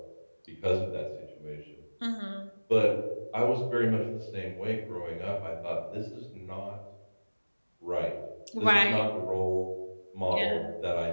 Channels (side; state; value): both; inverted; correlation -1.00